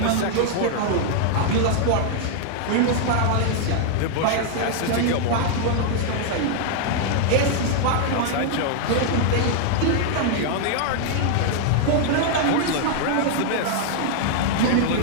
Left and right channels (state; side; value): different; both; correlation -0.01